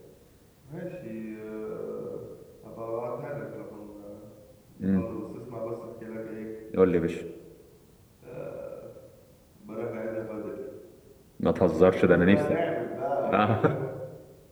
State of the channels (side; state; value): both; identical; correlation 1.00